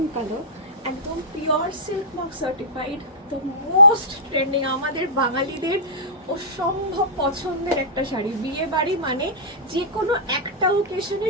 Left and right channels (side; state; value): both; normal; correlation -0.15